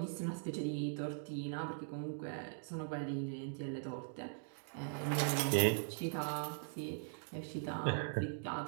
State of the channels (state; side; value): silent; left; digital silence